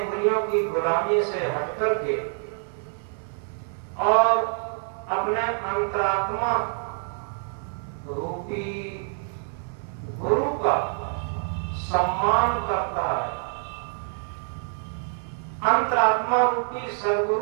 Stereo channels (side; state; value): left; silent; 58 dB below the other